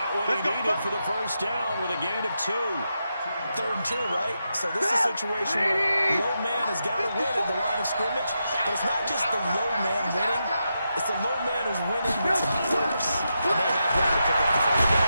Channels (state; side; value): inverted; both; correlation -0.86